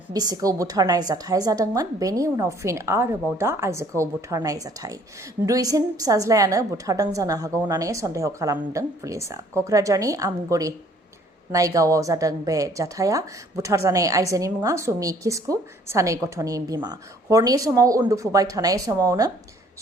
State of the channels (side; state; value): both; normal; correlation 0.59